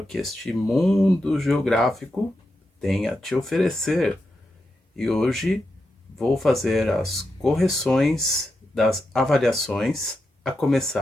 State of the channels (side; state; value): both; normal; correlation 0.87